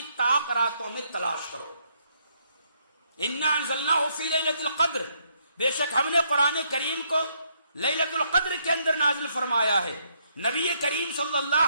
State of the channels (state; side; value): inverted; both; correlation -0.73